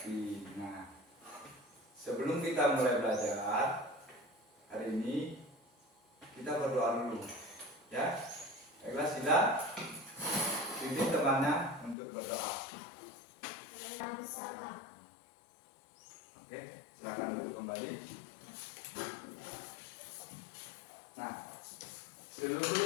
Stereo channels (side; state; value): right; drops out; at 12.0 s